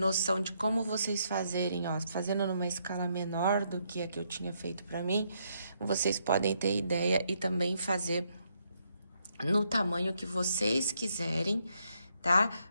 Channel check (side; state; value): both; inverted; correlation -0.75